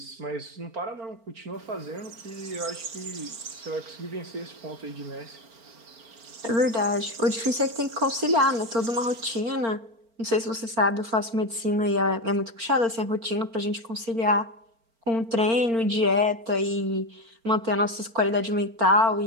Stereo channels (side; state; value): left; late; 4.4 ms